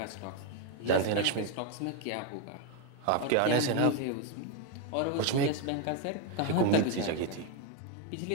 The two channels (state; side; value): different; both; correlation 0.01